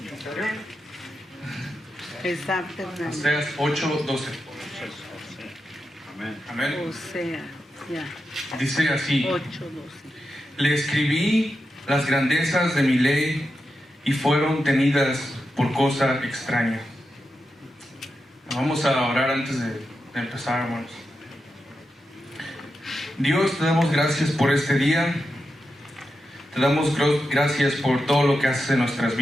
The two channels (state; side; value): normal; both; correlation 0.88